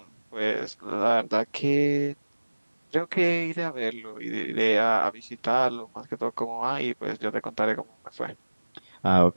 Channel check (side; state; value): both; inverted; correlation -1.00